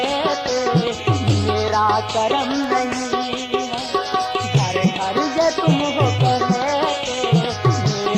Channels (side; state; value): both; identical; correlation 1.00